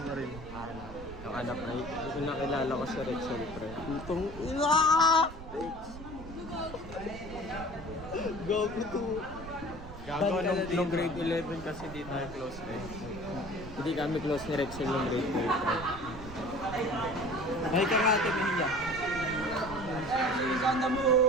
mo? Yung anak na yung nakilala ko sa Rexel, pre. Itong Go to. Gago, nung grade 11 kasi di tayo close eh. Hindi kami close ni Rexel nung grade 12. May ka nga ate Mia.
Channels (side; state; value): right; noise; rumble, 13 dB below the sound